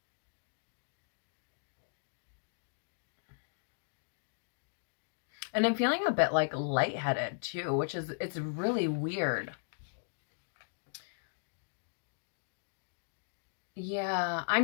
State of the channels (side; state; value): right; silent; digital silence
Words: And I'm feeling a bit lightheaded too, which is, it's really weird. Yeah,